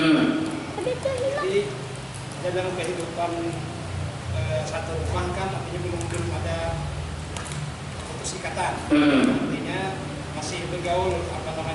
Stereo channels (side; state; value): both; identical; correlation 1.00